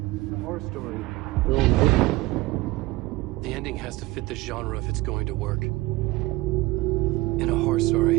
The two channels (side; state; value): left; quieter; 20.2 dB